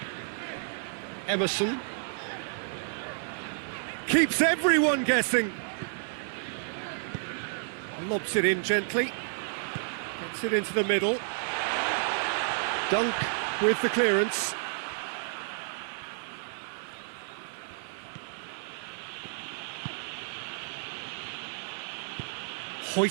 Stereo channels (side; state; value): left; silent; 57 dB below the other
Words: Emerson. Keeps everyone guessing. Lobs it in gently. Gets it into the middle. Dunk with the clearance.